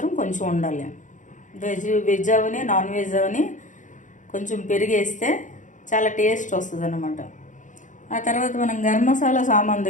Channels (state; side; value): late; right; 0.37 ms